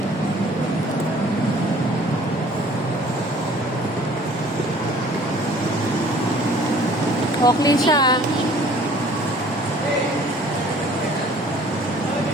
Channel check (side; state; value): both; normal; correlation 0.53